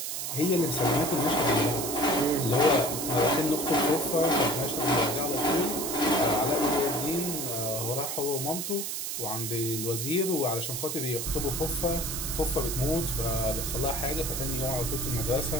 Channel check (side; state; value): right; noise; hiss, 3 dB below the sound